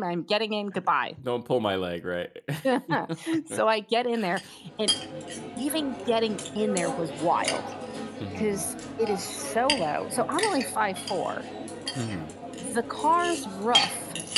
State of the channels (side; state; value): both; identical; correlation 1.00